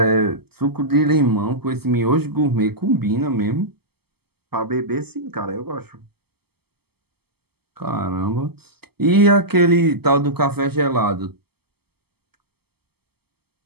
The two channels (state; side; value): late; left; 0.96 ms